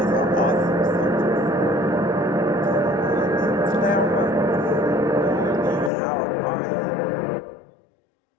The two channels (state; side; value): drops out; right; at 5.9 s